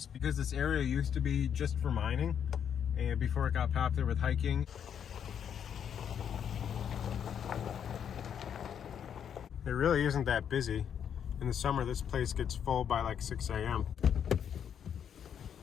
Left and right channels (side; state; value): right; quieter; 8.4 dB